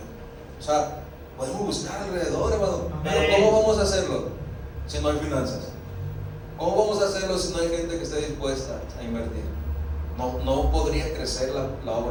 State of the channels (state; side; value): identical; both; correlation 1.00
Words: O sea, podemos buscar alrededor, hermano. Pero ¿cómo vamos a hacerlo si no hay finanzas? ¿Cómo vamos a hacerlo si no hay gente que esté dispuesta a invertir? no podría crecer la